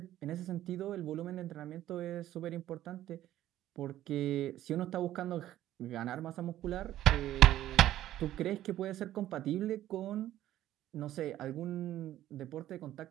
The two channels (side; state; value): left; quieter; 13.3 dB